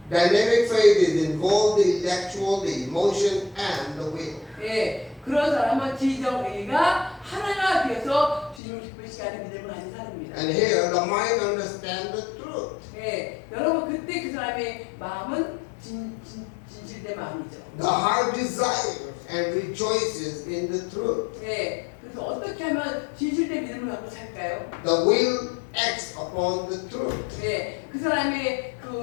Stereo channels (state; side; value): drops out; right; at 8.6 s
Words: dynamic faith is involved the intellectual, the emotion, and the will. 예, 그런 사람은 지적 의가 하나가 되어서 주님을 기쁘시게 하는 믿음을 가진 사람입니다. And here, the mind understands the truth. 예, 여러분 그때 그 사람의 마음은 진실된 마음이죠. The heart desires and rejoices in the truth. 예, 그래서 어떻게 하면 진실된 믿음을 갖고 살까요? The will acts upon the truth. 예, 그 사람의